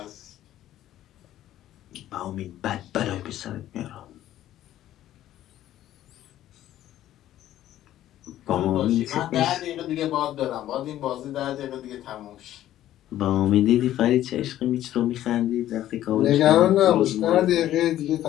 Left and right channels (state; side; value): quieter; right; 13.0 dB